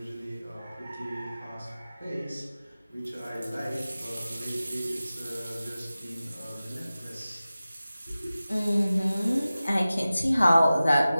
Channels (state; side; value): inverted; both; correlation -0.96